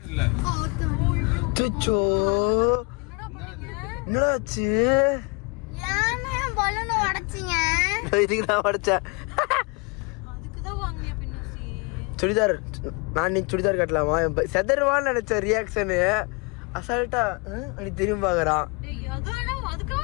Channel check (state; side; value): quieter; right; 31.4 dB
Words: சுச்சோ என்னாச்சு? இதுக்குதான் உடைச்சேன். சுடிதார் நான் இன்னைக்கு சுடிதார் கட்டலாமா? செதர்வான்னு நினைச்ச ரியாக்ஷனு அசால்ட்டா அப்படி திரும்பி பாக்குறான்.